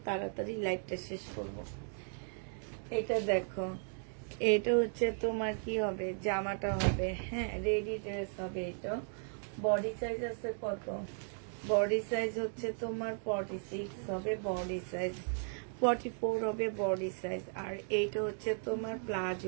তাড়াতাড়ি লাইভটা শেষ করব। এটা দেখো, এটা হচ্ছে তোমার কি হবে, জামাটা হবে, হ্যাঁ রেডি ড্রেস হবে। এটা বডি সাইজ আছে কত? বডি সাইজ হচ্ছে তোমার 46 হবে বডি সাইজ, 44 হবে বডি সাইজ। আর এইটা হচ্ছে তোমার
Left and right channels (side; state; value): left; silent; 54 dB below the other